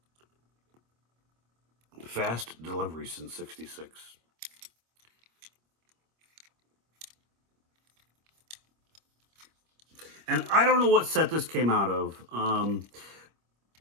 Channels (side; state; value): left; late; 25 ms